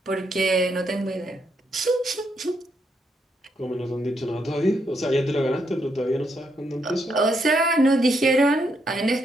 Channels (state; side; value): normal; both; correlation 0.78